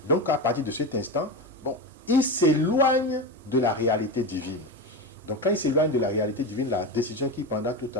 Donc à partir de cet instant, il s'éloigne de la réalité divine. Donc quand il s'éloigne de la réalité divine, la décision qu'il prendra tout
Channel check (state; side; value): normal; both; correlation 0.19